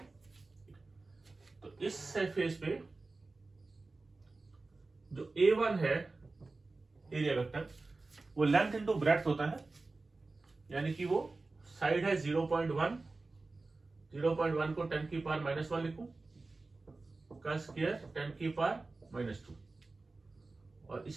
तो इस सरफेस पे जो A1 है एरिया वेक्टर, वो लेंथ इंटू ब्रेड्थ होता है, यानी कि वो साइड है 0.1, 0.1 को 10 की पावर -1 लिखूं का स्क्वायर 10 की पावर -2। और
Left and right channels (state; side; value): quieter; left; 3.5 dB